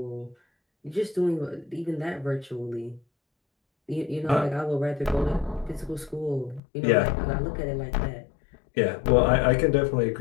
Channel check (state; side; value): drops out; right; at 6.6 s